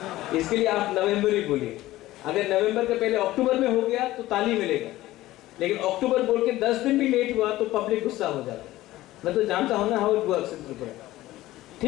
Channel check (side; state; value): right; quieter; 16.4 dB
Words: इसके लिए आप नवंबर ही बोलिए। अगर नवंबर के पहले अक्टूबर में हो गया तो ताली मिलेगा, लेकिन अक्टूबर बोल के 10 दिन भी लेट हुआ तो पब्लिक गुस्सा हो जाता है। मैं तो जानता हूं ना how it works in Tripura.